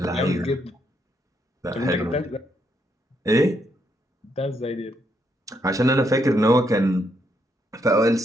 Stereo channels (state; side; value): normal; both; correlation 0.76